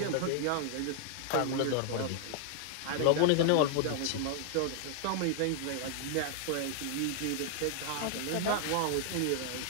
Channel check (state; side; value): different; both; correlation 0.00